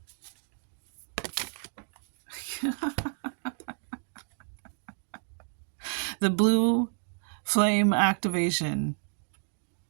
The blue flame activation,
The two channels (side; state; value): left; silent; 57 dB below the other